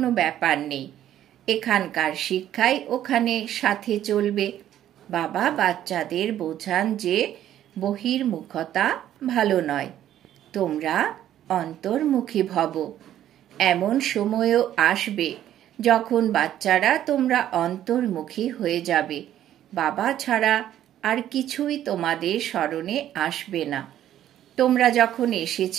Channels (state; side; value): quieter; left; 11.7 dB